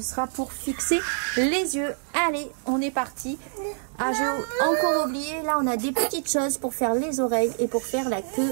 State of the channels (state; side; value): silent; left; 61 dB below the other